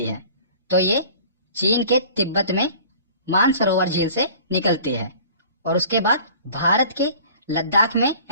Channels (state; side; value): inverted; both; correlation -0.46